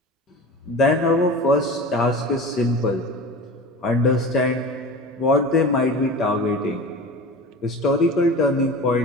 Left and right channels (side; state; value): both; normal; correlation 0.34